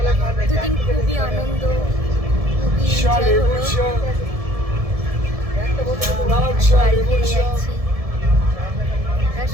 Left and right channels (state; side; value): late; left; 1.7 ms